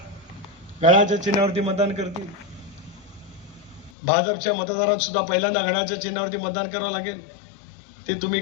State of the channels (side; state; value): right; drops out; at 3.9 s